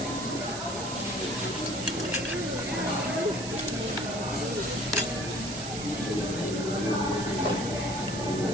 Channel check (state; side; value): noise; right; hiss, 8 dB below the sound